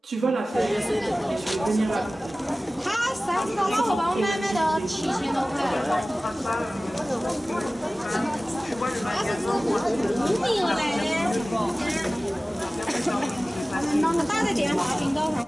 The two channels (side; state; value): both; normal; correlation 0.97